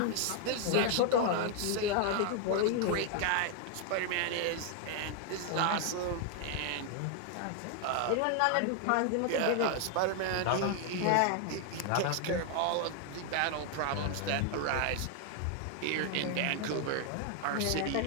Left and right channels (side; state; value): both; different; correlation 0.00